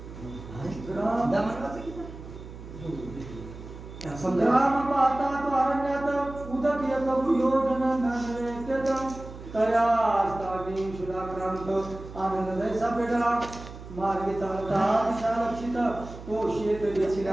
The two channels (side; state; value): right; noise; hum, 14 dB below the sound